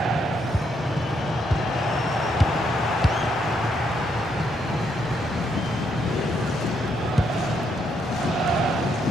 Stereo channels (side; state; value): both; normal; correlation 0.75